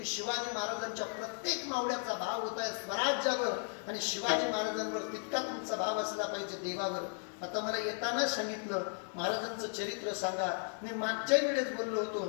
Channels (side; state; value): right; silent; 54 dB below the other